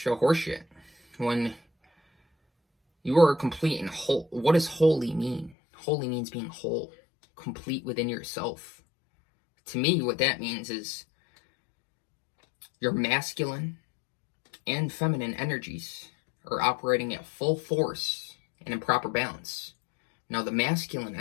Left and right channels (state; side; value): drops out; right; at 5.6 s